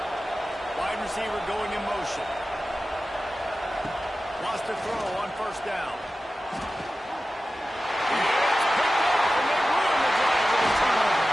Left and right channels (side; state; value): both; normal; correlation 0.95